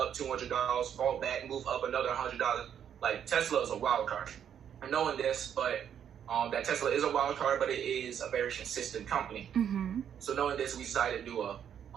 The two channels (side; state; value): left; quieter; 8.9 dB